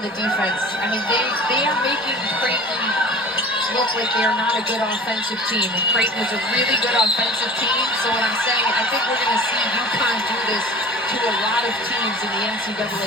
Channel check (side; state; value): both; normal; correlation 0.40